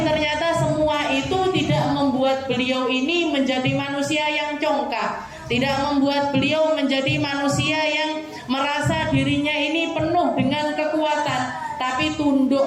ternyata semua itu tidak membuat beliau ini menjadi manusia yang congkak, tidak membuat beliau menjadi manusia yang merasa dirinya ini penuh dengan kekuatan, tapi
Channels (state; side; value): identical; both; correlation 1.00